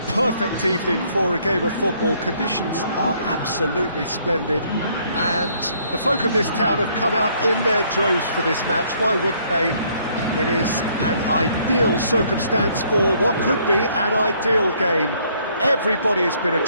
perfect evening for a game of football. Conditions are absolutely splendid and the folk of this town have come out in their droves for this match. Why wouldn't they? It is an ideal circumstance for what could be an ideal game. Everybody has been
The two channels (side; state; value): both; inverted; correlation -0.65